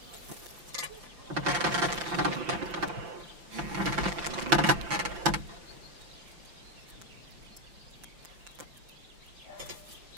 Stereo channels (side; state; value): left; late; 5.8 ms